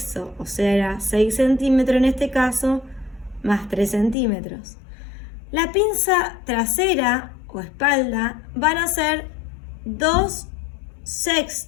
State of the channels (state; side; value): drops out; right; at 4.2 s